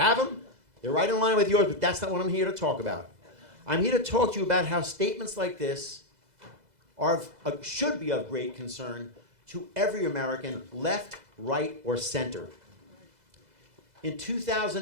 them. They're right in line with yours, but that's not what I'm here to talk about. I'm here to talk to you about how statements like this should be of great concern to every American, left, right, or center. In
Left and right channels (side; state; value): left; late; 2.0 ms